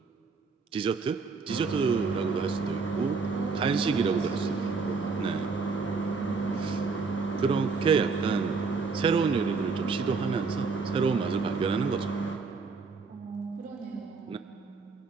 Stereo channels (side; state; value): left; quieter; 4.7 dB